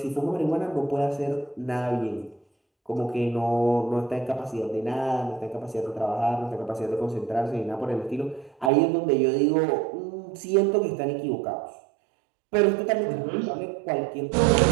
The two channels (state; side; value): drops out; left; at 8.7 s